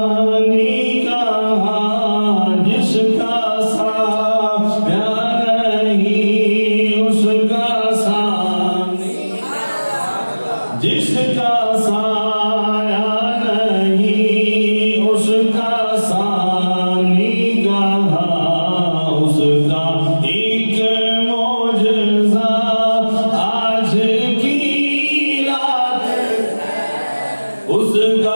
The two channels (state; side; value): inverted; both; correlation -1.00